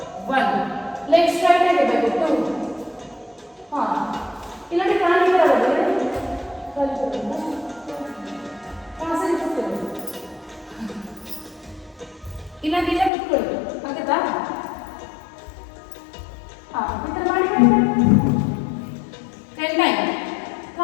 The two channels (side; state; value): right; drops out; at 13.1 s